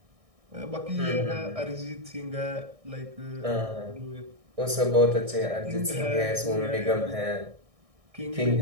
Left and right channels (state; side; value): late; left; 1.6 ms